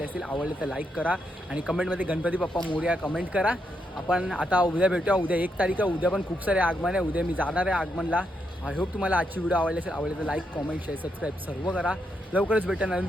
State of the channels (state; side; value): normal; both; correlation 0.80